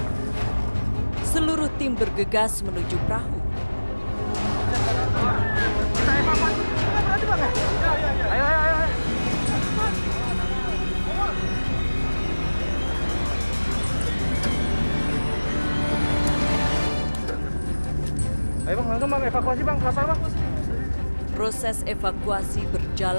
Seluruh tim bergegas menuju perahu. Ayo. Ayo bang, langsung bang, evakuasi bang, kapal bang. Proses evakuasi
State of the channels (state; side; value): inverted; both; correlation -1.00